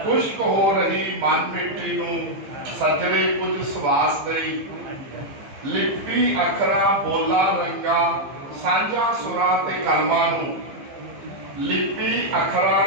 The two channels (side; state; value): left; late; 15 ms